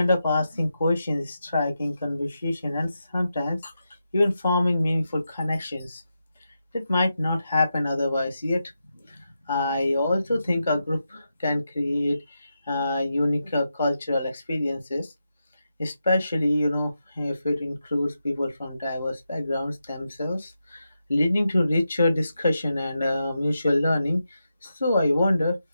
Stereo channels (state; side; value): inverted; both; correlation -0.87